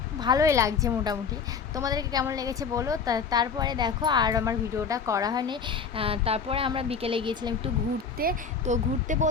ভালোই লাগছে মোটামুটি। তোমাদেরকে কেমন লেগেছে বলো। তারপরে দেখো আর আমার ভিডিওটা করা হয়নি। তারপরে আমরা বিকেলে গিয়েছিলাম একটু ঘুরতে। তো ঘুরতে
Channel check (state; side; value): quieter; right; 5.9 dB